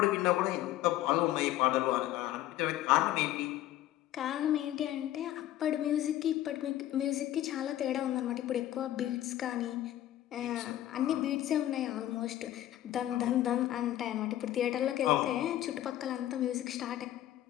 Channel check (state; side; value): quieter; right; 13.4 dB